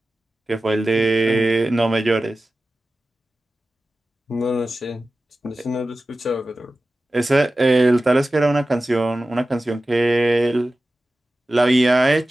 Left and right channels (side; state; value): both; normal; correlation 0.95